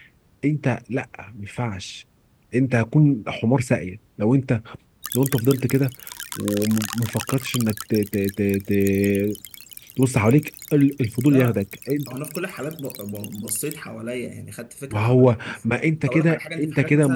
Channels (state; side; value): identical; both; correlation 1.00